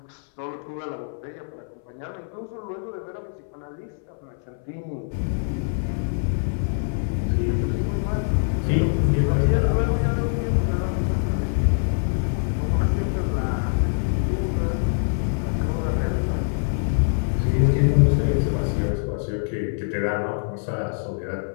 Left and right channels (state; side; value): silent; right; 60 dB below the other